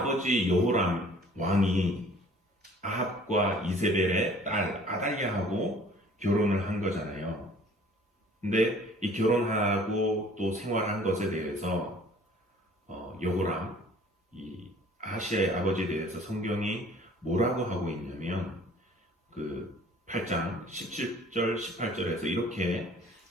여호람 왕이 아합과 이세벨의 딸 아달랴하고 결혼을 한 거잖아요. 근데 이 결혼하고 또 생활한 것에 대해서 여호람, 이 아하시아의 아버지에 대해서 성경이 뭐라고 하고 있냐면 그 8장 17절 18절에서 이렇게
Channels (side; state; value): both; normal; correlation 0.52